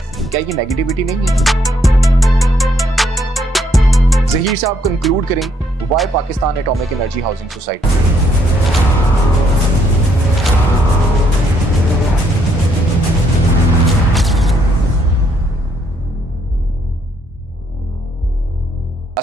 क्या ये नेगेटिविटी नहीं है? ज़हीर साहब कंक्लूड करें, why Pakistan atomic energy housing society?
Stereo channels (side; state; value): both; normal; correlation 0.71